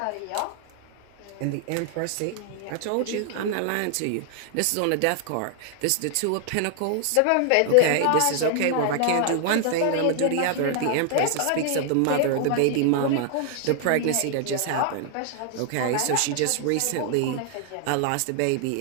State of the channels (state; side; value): different; both; correlation 0.00